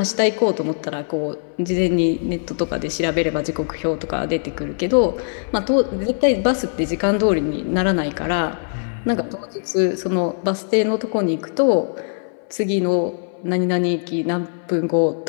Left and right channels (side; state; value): right; silent; 61 dB below the other